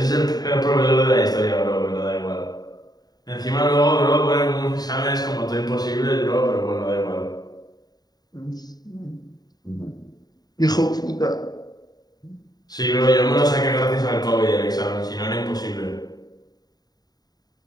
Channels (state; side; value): late; right; 0.19 ms